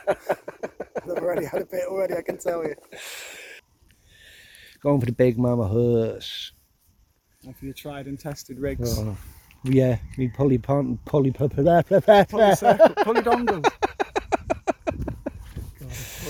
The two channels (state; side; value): identical; both; correlation 1.00